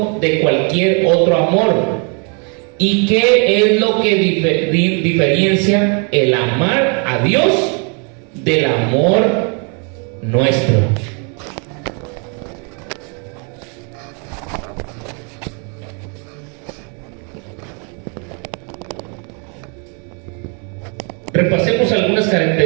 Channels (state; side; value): quieter; left; 36.9 dB